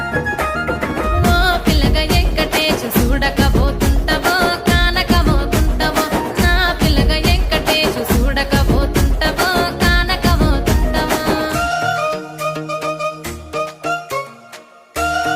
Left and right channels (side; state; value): both; identical; correlation 1.00